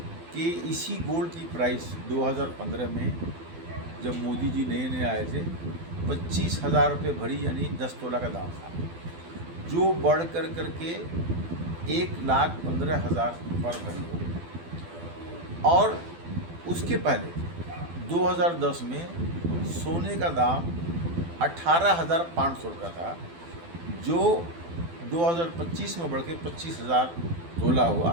कि इसी गोल्ड की प्राइस 2015 में जब मोदी जी नए नए आए थे 25,000 रुपये भरी यानी 10 तोला का दाम था, जो बढ़ कर करके 1,15,000 पर भरी हो गया। और उसके पहले 2010 में सोने का दाम 18,500 रुपया था, जो 2025 में बढ़ के 25,000 तोला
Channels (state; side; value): late; left; 12 ms